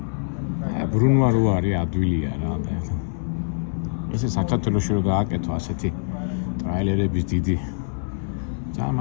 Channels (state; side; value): silent; right; digital silence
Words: ბრუნვა რო არის ადვილია რა და ესე საქართველოში რო გააკეთო ასეთი ტრაილერების დიდი ძალიან